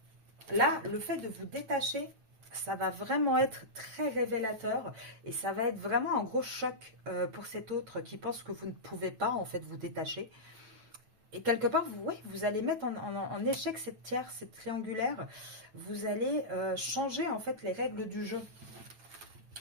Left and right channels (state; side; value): late; left; 9.0 ms